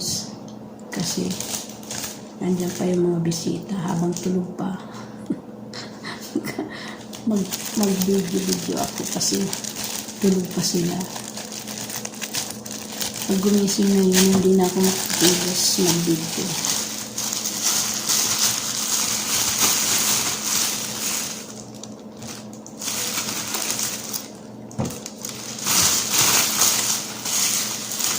Kasi nandiyan pa yung mga bisita habang tulog pa. Mag-video ako kasi tulog pa sila. Pag gumising na yun, hindi na ako makatulos mag-video.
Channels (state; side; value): identical; both; correlation 1.00